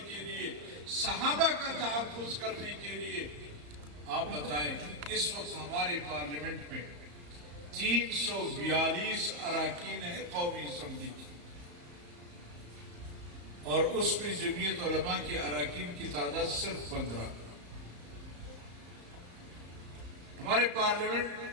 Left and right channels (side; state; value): left; late; 34 ms